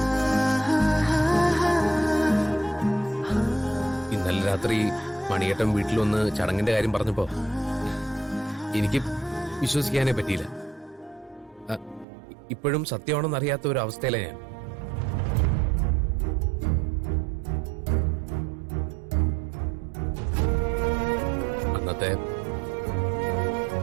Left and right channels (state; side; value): drops out; left; at 12.1 s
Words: ഇന്നലെ രാത്രി മണിയേട്ടൻ വീട്ടിൽ വന്ന് ചടങ്ങിന്റെ കാര്യം പറഞ്ഞപ്പോ എനിക്ക് വിശ്വസിക്കാനേ പറ്റിയില്ല. ഇപ്പോഴും സത്യമാണെന്ന് അറിയാത്ത ഒരു അവസ്ഥയിലാണ് ഞാൻ. അന്നത്തെ